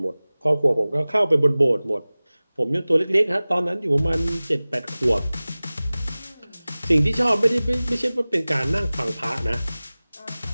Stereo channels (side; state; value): both; inverted; correlation -0.98